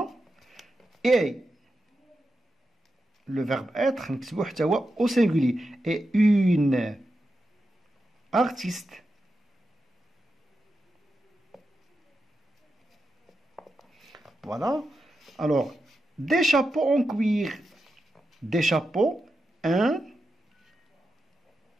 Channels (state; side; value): normal; both; correlation 0.89